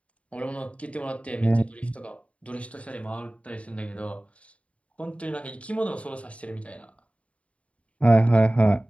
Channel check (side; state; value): right; late; 0.064 ms